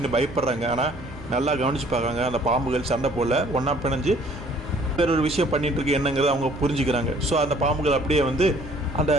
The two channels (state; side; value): normal; both; correlation 0.57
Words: பயப்படுறாங்க. ஆனால் நல்லா கவனித்து பார்க்குறாங்க, அந்த பாம்புகள் சண்டை போடல, ஒன்றா பிணைஞ்சு வேற ஒரு விஷயம் பண்ணிட்டு இருக்கு என்னங்கிறத அவங்க புரிஞ்சுக்கிறாங்க. ஸோ அந்த பாம்புகள் அப்படியே வந்து அந்த